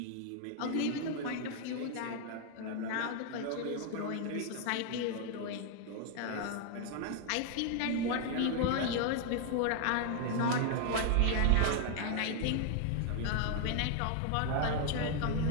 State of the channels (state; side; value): different; both; correlation 0.00